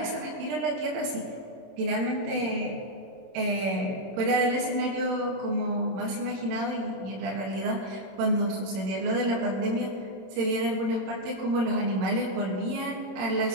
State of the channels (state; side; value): late; left; 26 ms